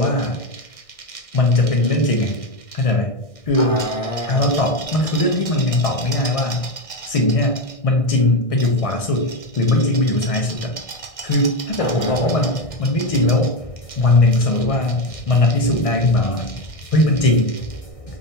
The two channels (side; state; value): right; late; 1.6 ms